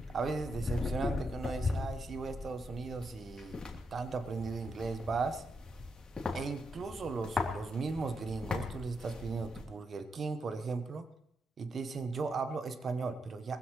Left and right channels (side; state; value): both; normal; correlation 0.82